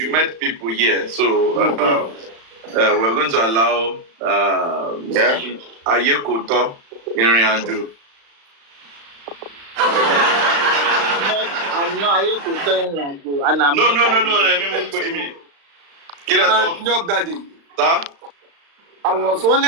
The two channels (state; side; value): late; left; 35 ms